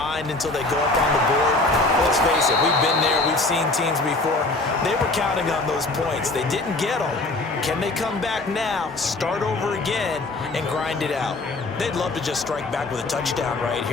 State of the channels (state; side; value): quieter; right; 3.1 dB